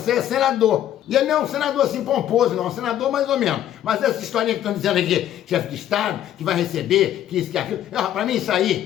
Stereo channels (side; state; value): right; quieter; 11.5 dB